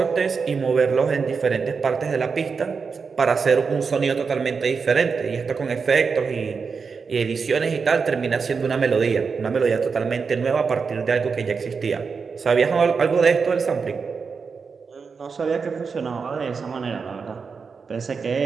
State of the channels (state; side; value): quieter; left; 5.3 dB